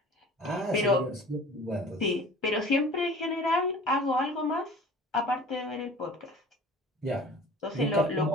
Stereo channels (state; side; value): normal; both; correlation 0.44